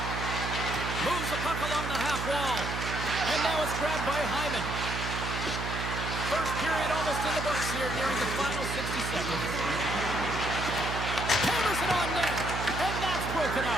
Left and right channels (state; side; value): noise; right; hum, 4 dB below the sound